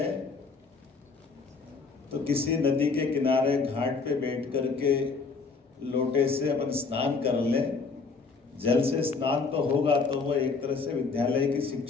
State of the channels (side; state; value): right; quieter; 4.6 dB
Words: तो किसी नदी के किनारे घाट पे बैठ करके लोटे से अपन स्नान कर लें, जल से स्नान तो होगा तो वो एक तरह से विद्यालय की